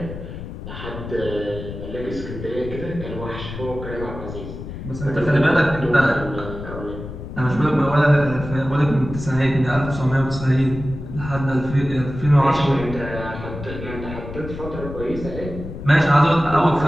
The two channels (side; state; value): left; noise; rumble, 10 dB below the sound